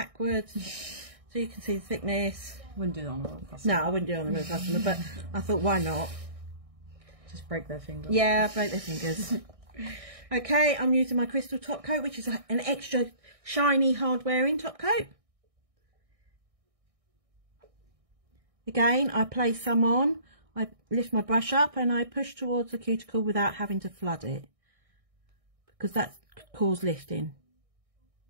so you can see the thickness. Wouldn't do that on a real customer. No, I wouldn't do it on a real customer, but I thought, why not? Just break their finger. Yeah, break their fingers. Okay, I'm using my crystal top coat, which is an extra shiny, hard wearing top coat. Again, I place some on, I lift my brush up and I push towards the cuticle without having to flood it, because that could cause lifting.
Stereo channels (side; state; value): left; late; 1.6 ms